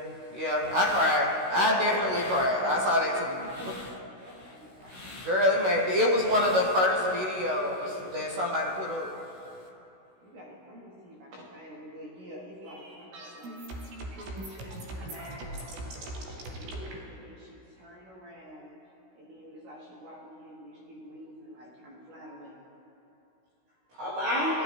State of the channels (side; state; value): left; late; 16 ms